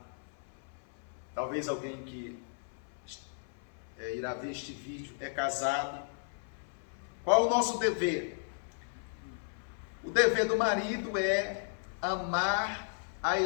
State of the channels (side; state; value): right; silent; 55 dB below the other